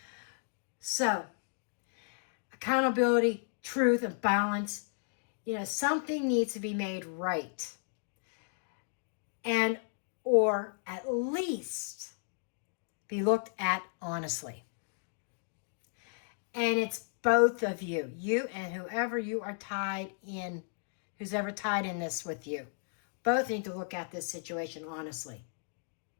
So, accountability, truth, and balance. Something needs to be made right. And, or at least be looked at honestly. And it's both of you, and whoever you are tied in, who's ever tied in this with you. Both need to look at this situation honestly.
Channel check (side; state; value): right; silent; digital silence